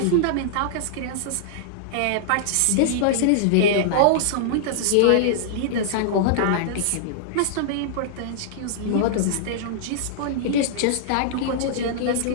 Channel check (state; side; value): different; both; correlation -0.01